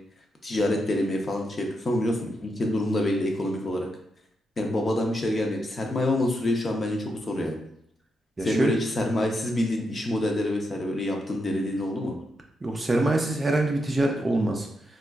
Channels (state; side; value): normal; both; correlation 0.83